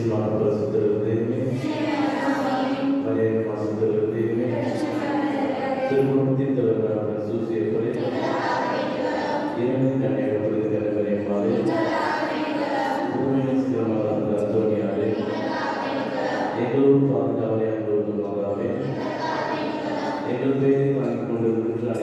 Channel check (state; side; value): identical; both; correlation 1.00